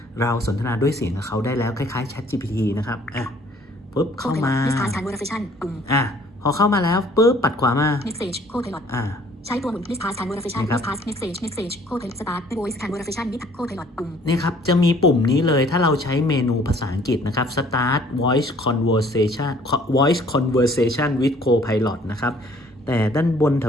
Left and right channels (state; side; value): normal; both; correlation 0.57